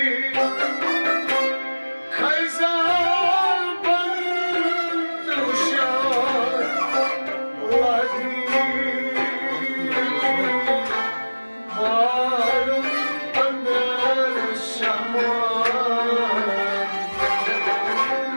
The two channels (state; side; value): inverted; both; correlation -1.00